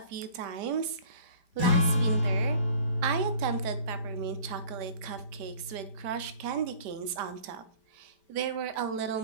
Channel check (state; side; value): late; left; 5.1 ms